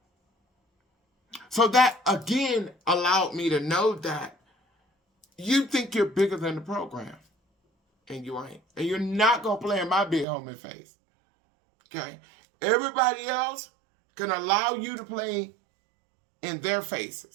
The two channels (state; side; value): drops out; left; at 10.2 s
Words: So that, again, allowed me to know that you think you're bigger than the program. And you ain't. And you're not going to play in my big homie face. Okay? Everybody else can allow you to play in their